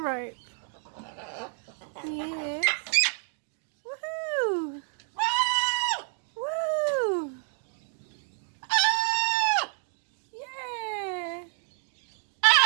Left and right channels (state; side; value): silent; left; 58 dB below the other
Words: rope. Yes. Woohoo! Woo! Yeah!